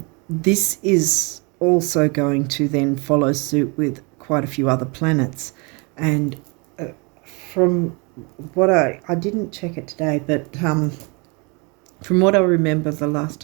this is also going to then follow suit with quite a few other planets. And from what I didn't check it today, but from what I remember the last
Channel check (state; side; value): quieter; left; 30.5 dB